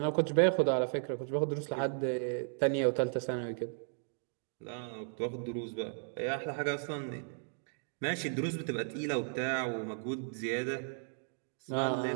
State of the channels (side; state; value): left; silent; digital silence